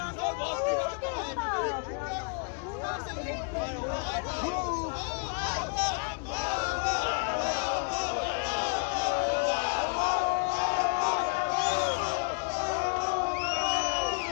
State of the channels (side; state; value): right; quieter; 38.4 dB